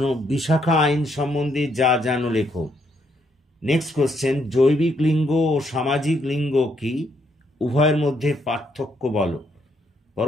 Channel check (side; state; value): both; normal; correlation 0.74